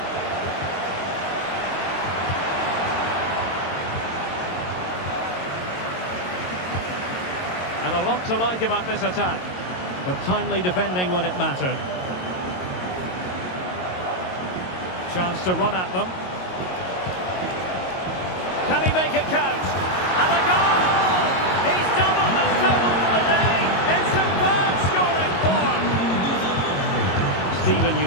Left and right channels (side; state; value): right; late; 22 ms